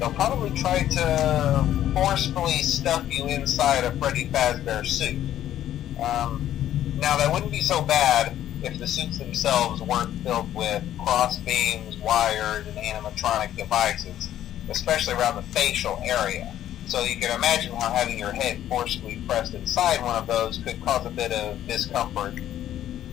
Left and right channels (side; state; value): right; quieter; 11.9 dB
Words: probably try to forcefully stuff you inside a Freddy Fazbear suit. Now, that wouldn't be so bad if the suits themselves weren't filled with cross beams, wires, and animatronic devices, especially around the facial area. So you can imagine how having your head forcefully pressed inside one of those could cause a bit of discomfort